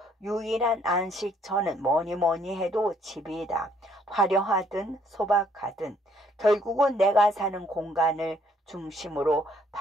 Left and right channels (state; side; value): normal; both; correlation 0.65